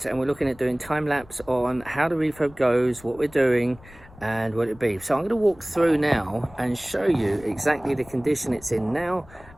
and we're looking at doing time-lapse on how the refurb goes, what we're doing and what it be. So I'm going to walk through now and show you exactly the condition it's in now,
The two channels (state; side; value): noise; left; rumble, 22 dB below the sound